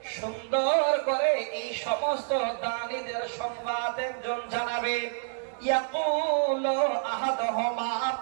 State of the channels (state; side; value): silent; left; 57 dB below the other